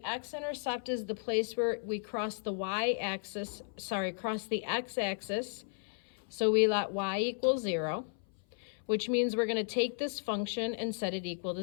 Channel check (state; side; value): silent; right; 55 dB below the other